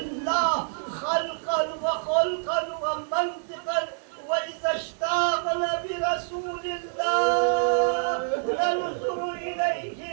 خلقا وخلقا ومنطقا وإذا اشتاقنا برسول الله ننظر إليه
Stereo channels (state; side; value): silent; left; digital silence